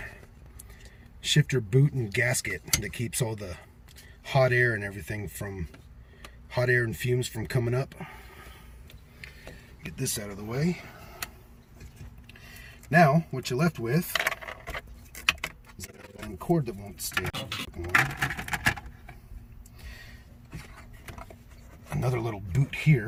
shifter boot and gasket that keeps all the hot air and everything from hot air and fumes from coming up. Get this out of the way. Now, what you're left with is a cord that won't stay on. Another little boot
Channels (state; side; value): identical; both; correlation 1.00